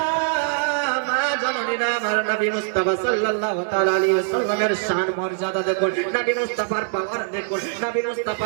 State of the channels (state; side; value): silent; left; digital silence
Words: মা জানেরা আমার নবী মুস্তাফা সাল্লাল্লাহু তাআলা আলাইহি ওয়াসাল্লামের শান মর্যাদা দেখুন নবী মুস্তাফার পাওয়ার দেখুন নবী